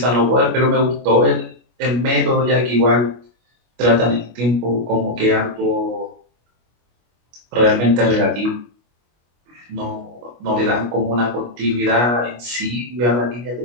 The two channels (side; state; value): left; late; 25 ms